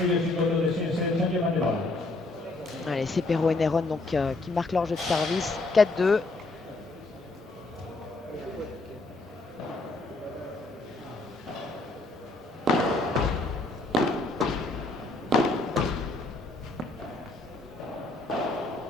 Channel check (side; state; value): right; quieter; 3.0 dB